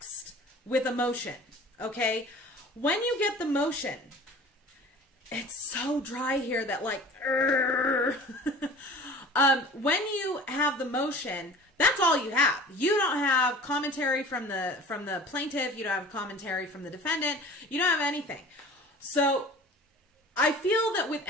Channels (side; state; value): both; normal; correlation 0.43